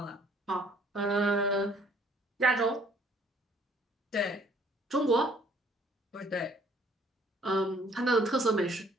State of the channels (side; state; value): both; normal; correlation 0.60